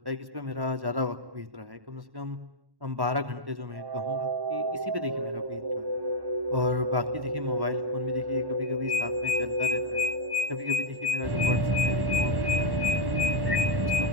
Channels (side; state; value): left; late; 1.1 ms